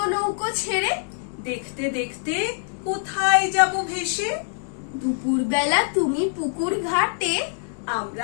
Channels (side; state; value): right; silent; digital silence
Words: নৌকো ছেড়ে, দেখতে দেখতে কোথায় যাব ভেসে। দুপুর বেলা তুমি পুকুর ঘাটে,